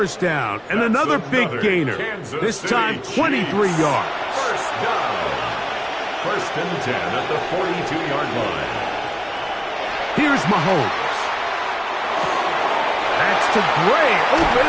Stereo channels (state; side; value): identical; both; correlation 1.00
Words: down, and another big gainer. This time, 23 yards. First down. First and 10 at the 42-yard line. Here's Mahomes. That's to Gray, open